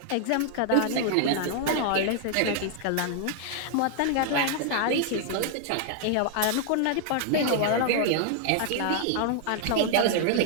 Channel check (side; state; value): both; different; correlation 0.00